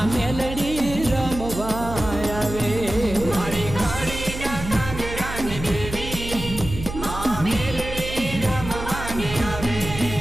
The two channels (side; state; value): right; noise; hum, 8 dB below the sound